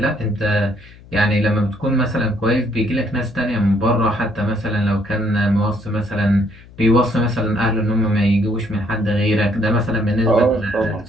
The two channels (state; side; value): noise; left; hum, 22 dB below the sound